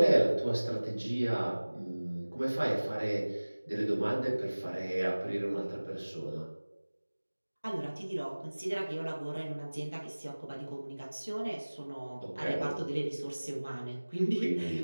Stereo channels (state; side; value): inverted; both; correlation -1.00